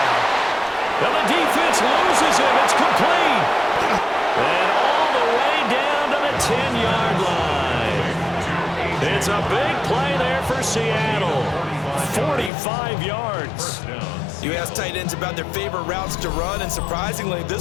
Well, the defense loses him. It's complete. And all the way down to the 10-yard line. It's a big play there for Seattle. 45 yards. You ask tight ends about their favorite routes to run, and surprisingly,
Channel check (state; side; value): drops out; right; at 12.5 s